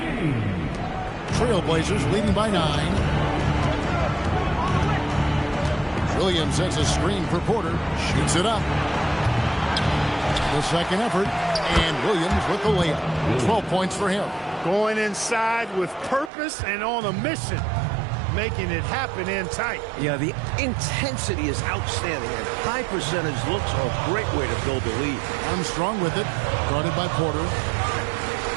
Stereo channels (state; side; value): drops out; left; at 16.3 s